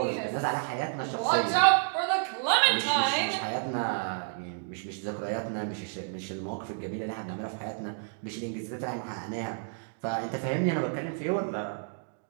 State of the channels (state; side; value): silent; left; digital silence